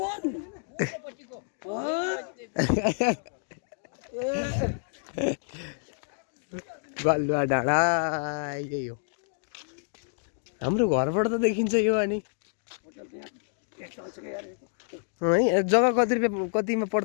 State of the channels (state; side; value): silent; right; digital silence